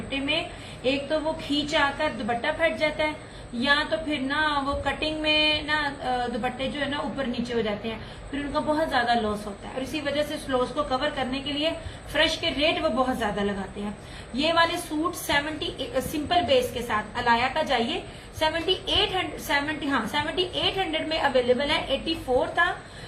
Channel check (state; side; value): identical; both; correlation 1.00